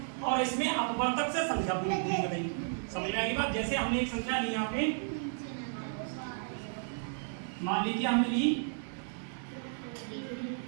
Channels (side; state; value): left; silent; digital silence